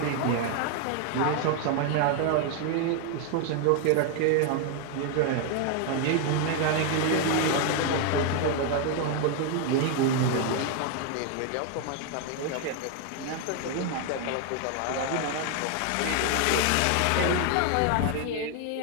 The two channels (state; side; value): different; both; correlation 0.00